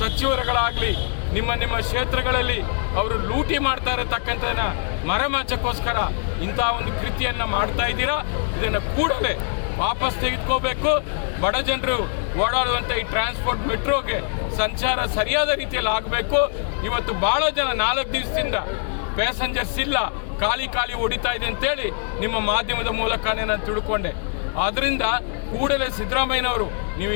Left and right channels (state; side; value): silent; right; 63 dB below the other